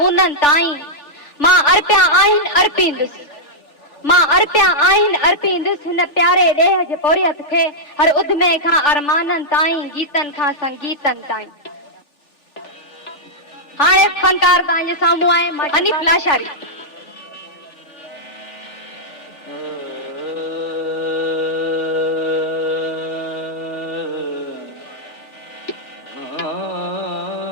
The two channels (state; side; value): late; right; 3.4 ms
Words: ताईं मां अर्पिया आहिनि अर्पींदुसि, मां अर्पिया आहिनि अर्पींदुसि हिन प्यारे ॾेह जे पोरियत खे हर उद्मे खां अरमाननि ताईं गीतनि खां संगीतनि ताईं। हाणे फनकार तव्हांजे साम्हूं आहे हनीफ लाशारी।